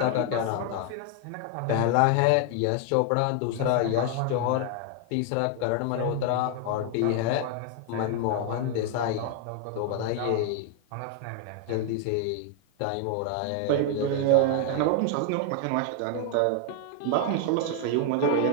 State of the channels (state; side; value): different; both; correlation 0.00